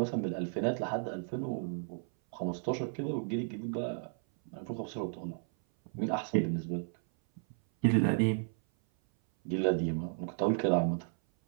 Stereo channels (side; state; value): left; silent; 55 dB below the other